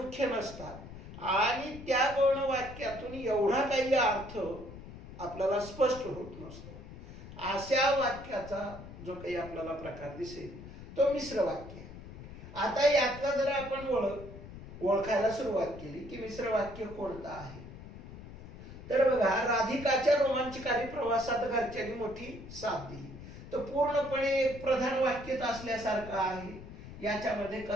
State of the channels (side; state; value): left; noise; rumble, 14 dB below the sound